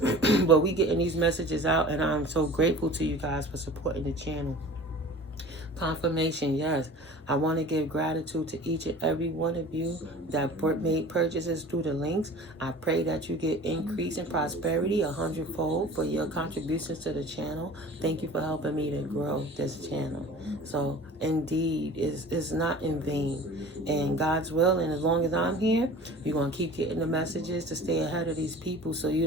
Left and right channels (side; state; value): both; normal; correlation 0.41